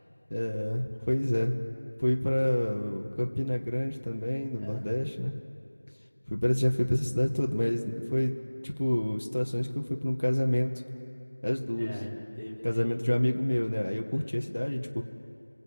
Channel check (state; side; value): inverted; both; correlation -1.00